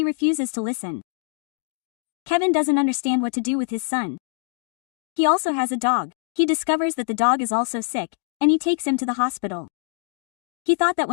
refuses to listen. Kevin doesn't understand what to do with his son. He also has a dog. He discovers that the dog is also sick, and he takes him to the hospital. He thought that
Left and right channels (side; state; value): right; silent; digital silence